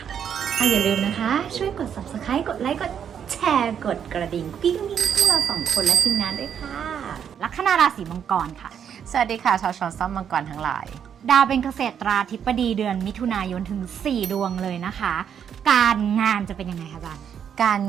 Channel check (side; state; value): left; quieter; 8.3 dB